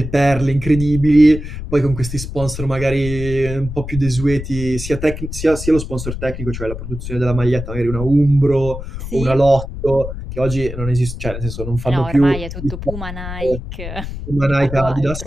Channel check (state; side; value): noise; left; rumble, 8 dB below the sound